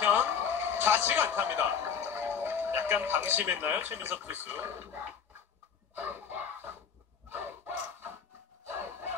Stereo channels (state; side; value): quieter; right; 6.9 dB